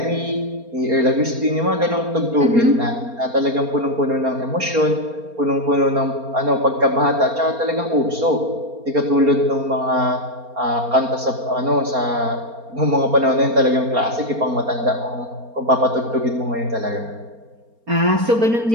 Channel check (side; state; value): left; late; 4.3 ms